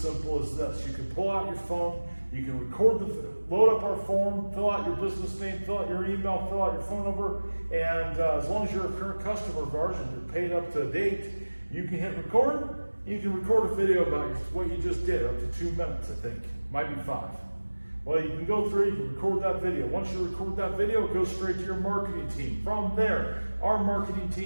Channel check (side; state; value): both; inverted; correlation -1.00